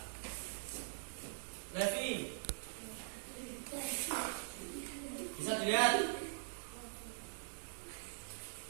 Levi, bisa dilihat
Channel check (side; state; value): left; silent; digital silence